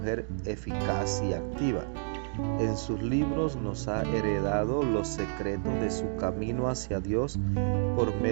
eficaz y activa. En sus libros nos ha heredado los secretos de su camino hacia Dios por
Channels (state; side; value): silent; left; digital silence